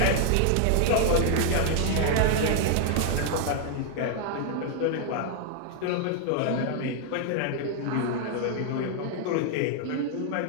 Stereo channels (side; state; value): both; different; correlation 0.00